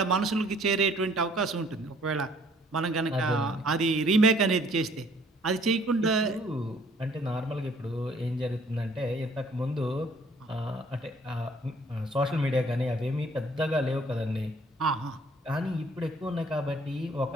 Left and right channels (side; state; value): both; normal; correlation 0.59